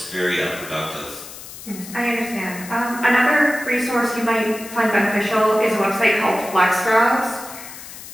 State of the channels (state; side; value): noise; left; hiss, 14 dB below the sound